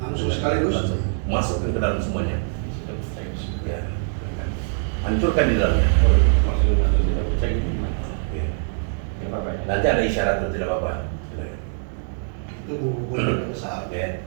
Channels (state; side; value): silent; left; 63 dB below the other